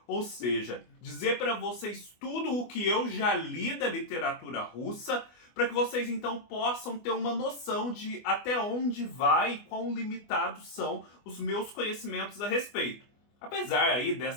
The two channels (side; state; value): right; late; 24 ms